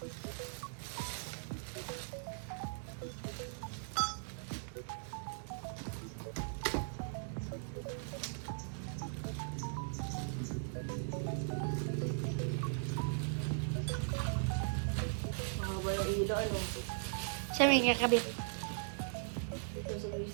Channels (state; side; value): silent; left; digital silence